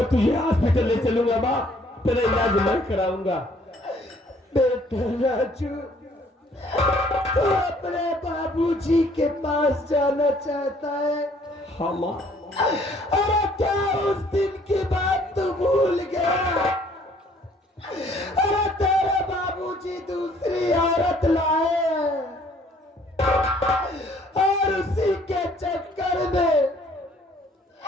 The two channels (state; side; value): normal; both; correlation 0.60